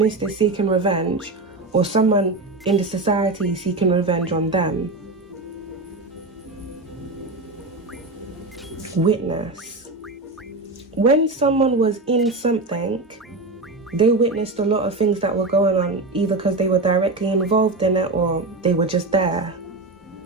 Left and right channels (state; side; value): quieter; left; 3.2 dB